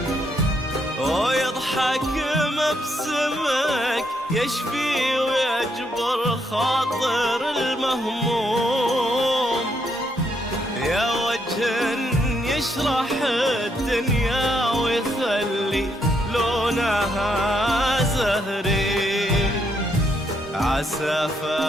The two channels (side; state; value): both; normal; correlation 0.76